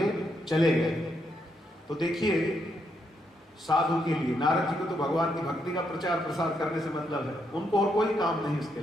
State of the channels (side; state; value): both; normal; correlation 0.78